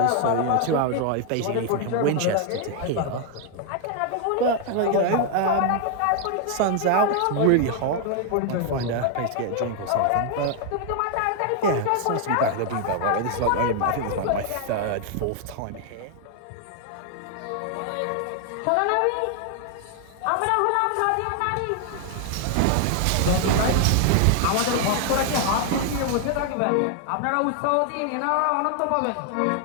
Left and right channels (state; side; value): different; both; correlation 0.00